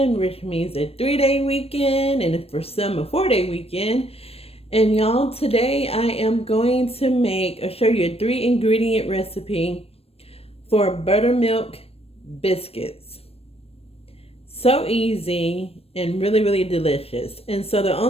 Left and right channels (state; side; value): late; right; 0.28 ms